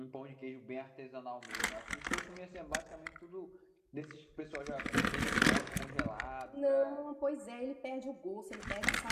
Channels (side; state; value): both; identical; correlation 1.00